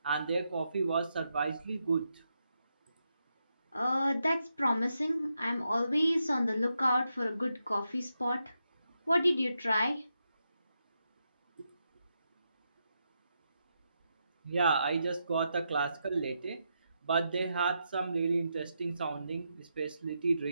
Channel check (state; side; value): inverted; both; correlation -0.84